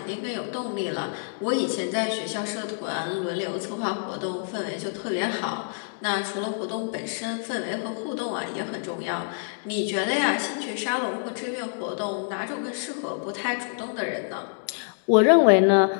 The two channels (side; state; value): right; silent; digital silence